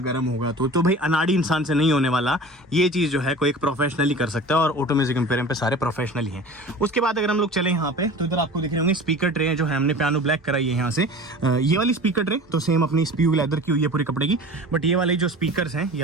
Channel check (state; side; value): normal; both; correlation 0.39